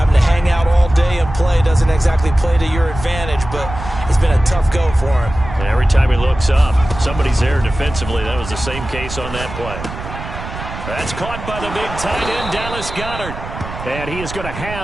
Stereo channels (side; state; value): right; noise; rumble, 10 dB below the sound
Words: to hang out all day and play doesn't exactly play to your advantage, but it's been a tough go for him. And every time he looks up, somebody's there defensively. That was the same case on that play. That's caught by the big tight end, Dallas Goedert. And he is going to